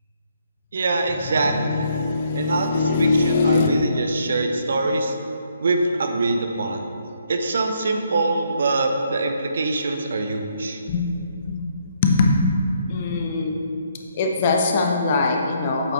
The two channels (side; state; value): both; inverted; correlation -0.71